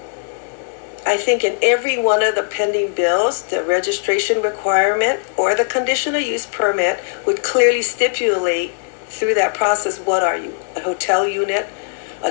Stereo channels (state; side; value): silent; right; digital silence